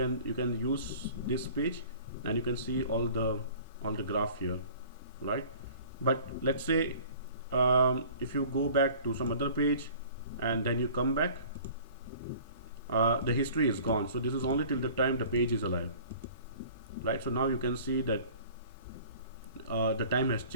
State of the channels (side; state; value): both; inverted; correlation -0.48